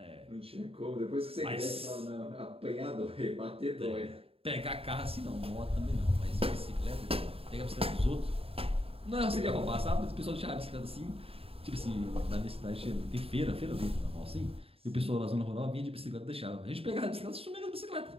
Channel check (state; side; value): late; left; 0.28 ms